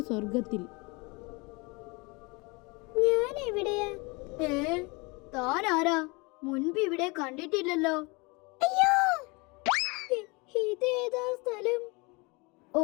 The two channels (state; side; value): quieter; right; 27.4 dB